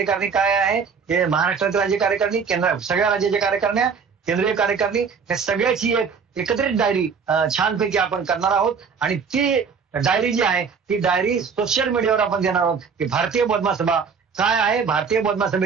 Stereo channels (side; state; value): left; quieter; 5.9 dB